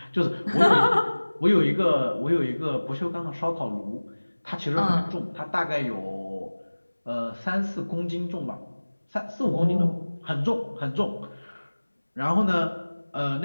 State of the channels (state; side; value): inverted; both; correlation -1.00